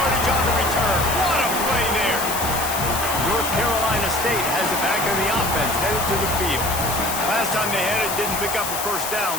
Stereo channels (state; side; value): noise; left; hiss, 4 dB below the sound